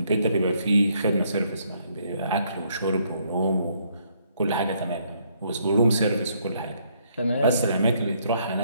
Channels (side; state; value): both; inverted; correlation -0.69